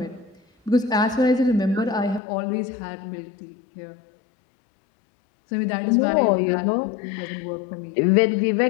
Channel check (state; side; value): drops out; right; at 2.2 s